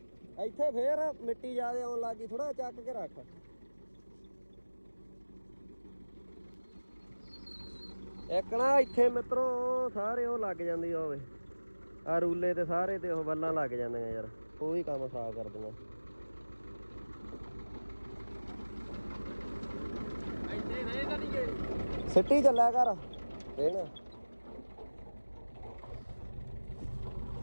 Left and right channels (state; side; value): inverted; both; correlation -1.00